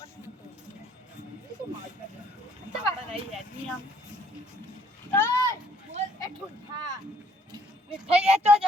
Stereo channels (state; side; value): normal; both; correlation 0.64